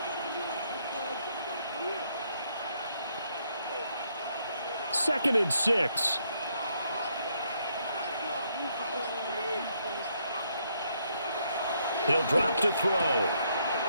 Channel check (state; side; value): inverted; both; correlation -0.73